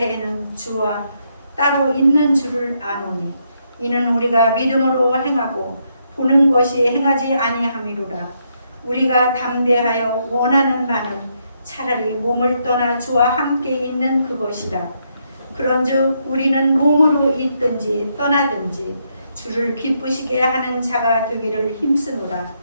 주와 따로 있는 줄을 아노니 이는 우리가 믿음으로 행하고 보는 것이 행하지 아니함이로라. 우리가 담대하여 원하는 바는 차라리 몸을 떠나 주와 함께 있는 그것이라. 그런즉 우리는 몸으로 있든지 떠나든지 주를 기쁘시게 하는 자가 되기를 힘쓰노라.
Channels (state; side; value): inverted; both; correlation -0.77